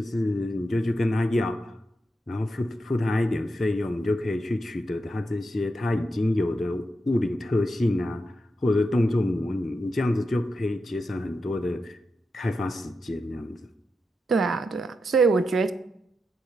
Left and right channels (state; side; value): normal; both; correlation 0.87